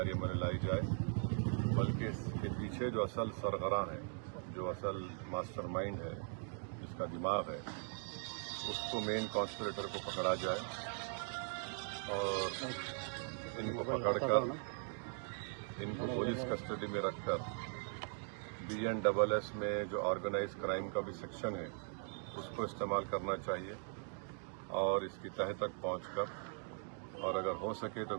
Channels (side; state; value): left; silent; 51 dB below the other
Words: عمل میں لائی جائے، بلکہ اس کے پیچھے جو اصل سرغراں ہے، جو اصل ماسٹر مائنڈ ہے، جس کا دماغ ہے، اس کو مین کانسپریٹر کو پکڑا جائے اور ان کو پکڑ کر ان کو پولیس کسٹڈی میں رکھ کر BNSS میں جو آرگنائز کرائم کا بھی سیکشن ہے اس کو استعمال کرنا چاہیے اور اس کی تہہ تک پہنچ کر، اور اگر ہو سکے تو